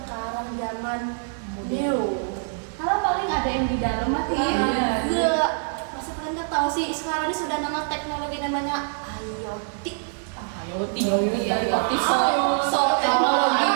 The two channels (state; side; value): silent; left; 62 dB below the other